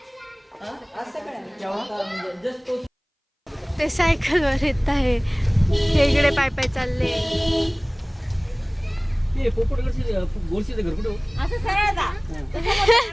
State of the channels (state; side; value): identical; both; correlation 1.00